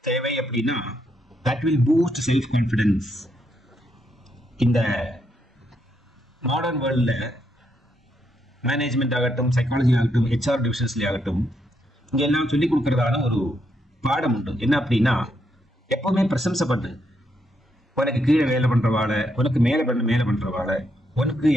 தேவை அப்படின்னா, that will boost self confidence. இந்த மாடர்ன் வேர்ல்ட்ல மேனேஜ்மெண்ட் ஆகட்டும், சைக்காலஜி ஆகட்டும், HR டிவிஷன்ஸ்ல ஆகட்டும், இங்க எல்லாம் சொல்லிக் கொடுக்கறதான ஒரு பாடம் உண்டு. என்ன அப்படின்னா, எப்பவுமே பிரசம்சை பண்ணு. உனக்கு கீழே வேலை பண்றவாள, உனக்கு மேல பண்றவாள, உனக்கு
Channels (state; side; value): normal; both; correlation 0.78